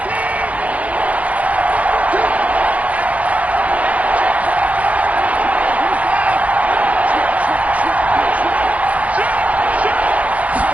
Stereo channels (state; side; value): late; left; 0.067 ms